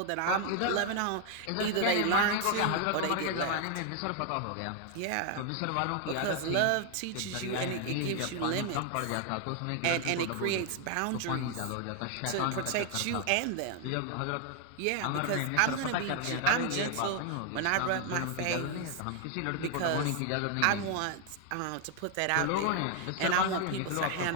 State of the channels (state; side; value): different; both; correlation 0.00